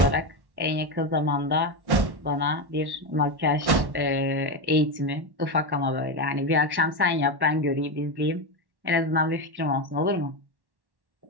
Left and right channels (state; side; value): late; left; 1.1 ms